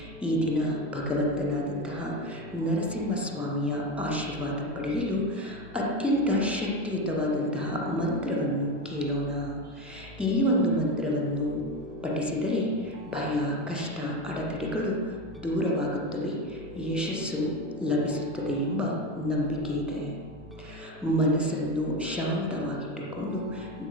ಈ ದಿನ ಭಗವಂತನಾದಂತಹ ನರಸಿಂಹಸ್ವಾಮಿಯ ಆಶೀರ್ವಾದ ಪಡೆಯಲು ಅತ್ಯಂತ ಶಕ್ತಿಯುತವಾದಂತಹ ಮಂತ್ರವನ್ನು ಕೇಳೋಣ. ಈ ಒಂದು ಮಂತ್ರವನ್ನು ಪಠಿಸಿದರೆ ಭಯ, ಕಷ್ಟ, ಅಡೆತಡೆಗಳು ದೂರವಾಗುತ್ತವೆ, ಯಶಸ್ಸು ಲಭಿಸುತ್ತದೆ ಎಂಬ ನಂಬಿಕೆ ಇದೆ. ಮನಸ್ಸನ್ನು ಶಾಂತವಾಗಿಟ್ಟುಕೊಂಡು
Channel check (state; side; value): normal; both; correlation 0.19